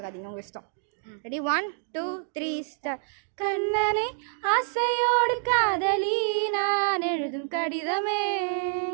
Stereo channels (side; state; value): left; silent; 60 dB below the other